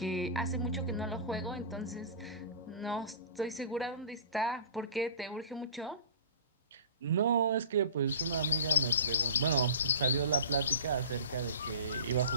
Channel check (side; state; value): both; inverted; correlation -0.37